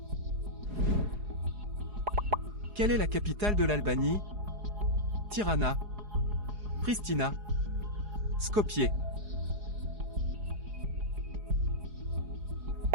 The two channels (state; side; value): late; left; 4.8 ms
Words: Quelle est la capitale de l'Albanie? Tirana, Pristina, Skopje.